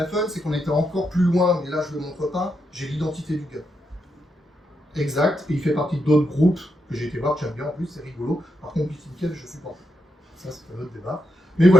fun, c'est qu'on était encore plus loin, mais là je ne le montre pas, j'ai l'identité du gars. Exact, et il fait partie d'autres groupes que j'ai été voir, que j'aime bien en plus, c'est rigolo. Par contre, BitInCave, je supporte. Ça, c'est un autre débat. Mais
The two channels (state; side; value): normal; both; correlation 0.83